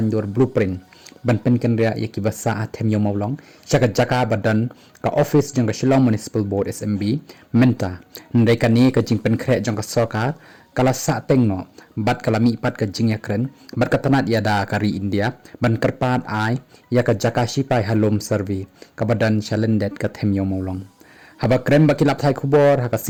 blueprint ban pen kynriah iki basa them yo maulong jaka badan ka office jang ke Shillong Municipal Board SMB Myntri ndai kani ke jing pen khre jang ke sarkar kala sa tengno bat kala mi pat ke jing yakren bat katanat yada kari India ban kerpat ai ya ke jaka shipai halom survey ke badan chalendet ke them yo maulong haba krem bakilap thai khubor ha ka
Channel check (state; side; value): identical; both; correlation 1.00